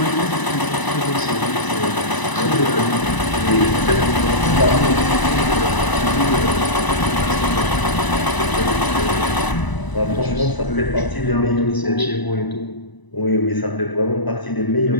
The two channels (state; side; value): late; right; 1.0 ms